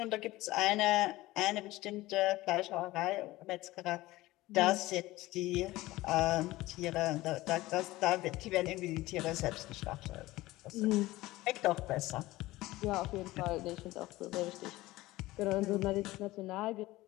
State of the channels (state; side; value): quieter; right; 18.3 dB